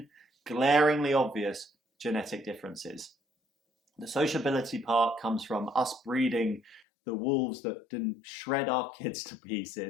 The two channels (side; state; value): right; drops out; at 6.8 s